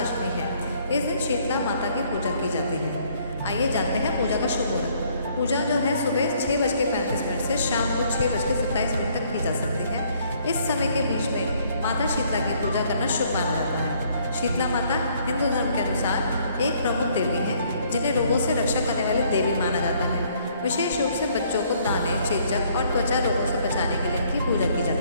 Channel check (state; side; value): inverted; both; correlation -0.64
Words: अष्टमी है। इस दिन शीतला माता की पूजा की जाती है। आइए जानते हैं पूजा का शुभ मुहूर्त। पूजा जो है सुबह 6:35 से शाम को 6:27 तक की जा सकती है। इस समय के बीच में माता शीतला की पूजा करना शुभ माना जाता है। शीतला माता हिंदू धर्म के अनुसार एक प्रमुख देवी है, जिन्हें रोगों से रक्षा करने वाली देवी माना जाता है। विशेष रूप से बच्चों को दाने, चेचक और त्वचा रोगों से बचाने के लिए इनकी पूजा की